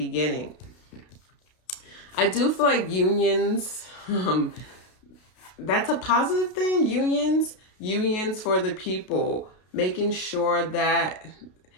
I do feel like unions, that's a positive thing. Unions for the people, making sure that,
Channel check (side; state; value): right; late; 32 ms